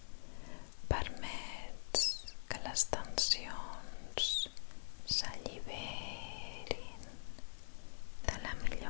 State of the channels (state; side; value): silent; right; digital silence